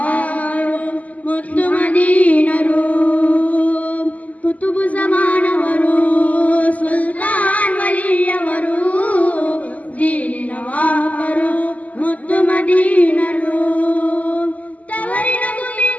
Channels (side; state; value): right; late; 0.073 ms